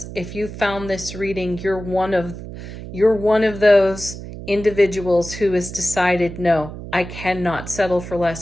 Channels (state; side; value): noise; right; hum, 11 dB below the sound